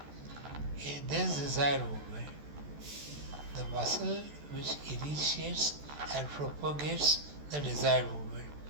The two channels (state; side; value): late; left; 14 ms